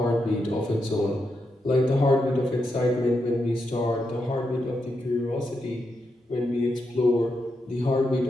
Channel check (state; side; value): normal; both; correlation 0.84